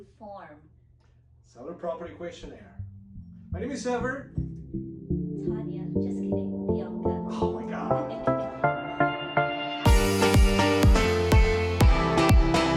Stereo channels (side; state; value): both; identical; correlation 1.00